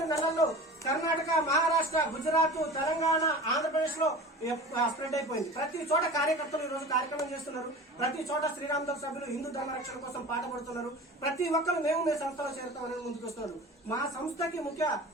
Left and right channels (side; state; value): both; normal; correlation 0.36